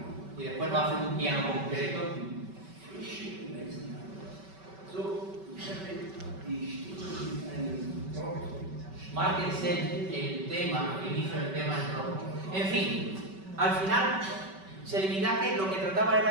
y después nos hacen un piano concreto. Márquense el tema, el inicio del tema en rojo. En fin, al final, Celibidache lo que trataba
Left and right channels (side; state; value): left; late; 5.2 ms